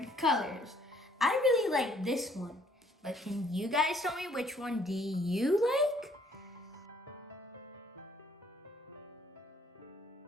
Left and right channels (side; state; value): both; normal; correlation 0.63